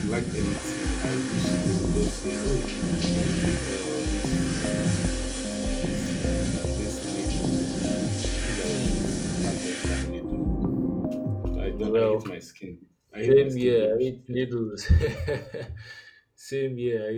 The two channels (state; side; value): identical; both; correlation 1.00